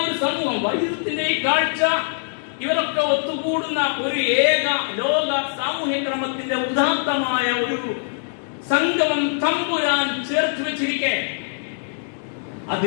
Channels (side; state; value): right; silent; digital silence